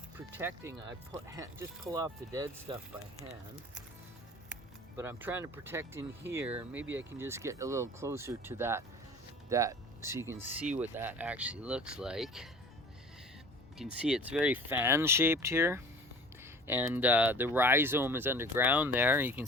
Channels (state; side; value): normal; both; correlation 0.44